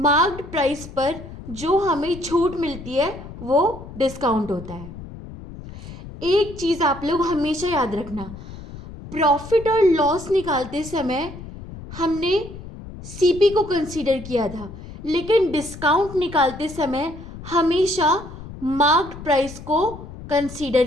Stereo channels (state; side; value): noise; left; rumble, 14 dB below the sound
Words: प्राइस पर जो हमें छूट मिलती है वो डिस्काउंट होता है। एक चीज़ आप लोग हमेशा याद रखना, प्रॉफिट और लॉस निकालते समय हमने सीपी को कंसीडर किया था, लेकिन डिस्काउंट निकालते समय हमेशा मार्क्ड प्राइस को कंसीडर